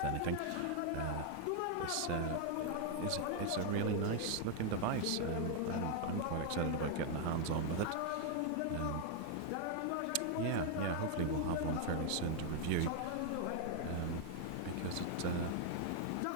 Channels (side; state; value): both; different; correlation 0.00